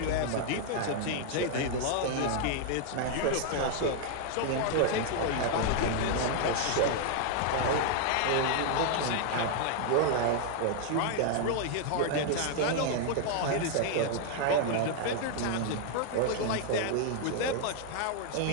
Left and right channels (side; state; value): both; different; correlation 0.00